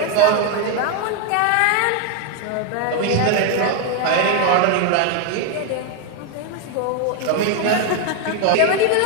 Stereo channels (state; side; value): different; both; correlation 0.01